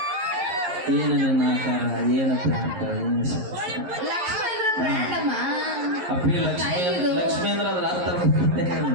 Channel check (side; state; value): left; late; 11 ms